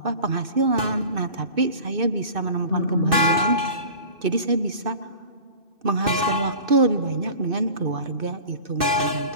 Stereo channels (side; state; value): left; late; 2.6 ms